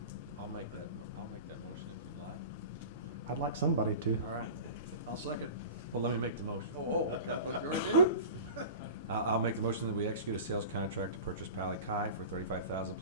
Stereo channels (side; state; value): both; inverted; correlation -0.35